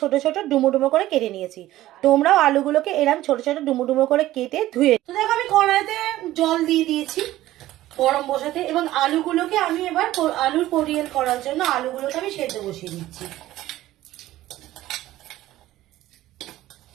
ছোট ডুমো ডুমো করে কেটে নিয়েছি। তোমরাও আলুগুলোকে এরকম ছোট ছোট ডুমো ডুমো করে কেটে ধুয়ে। তো দেখো আমি কড়াইতে জল দিয়ে দিয়েছি গরম বসাতে, এবং আলুগুলোকে আমি এবার আলুর পরিয়েল করার জন্য আলুগুলোকে আমি সেদ্ধ বসিয়ে দিচ্ছি।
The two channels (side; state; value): left; quieter; 15.3 dB